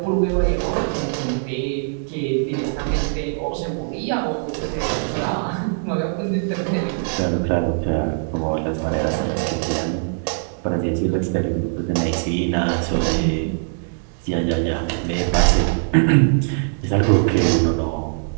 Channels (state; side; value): silent; left; digital silence